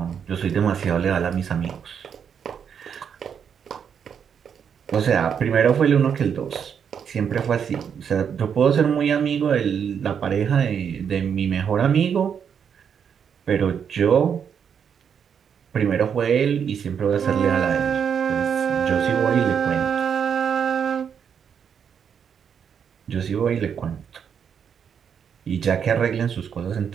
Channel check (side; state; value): left; quieter; 7.5 dB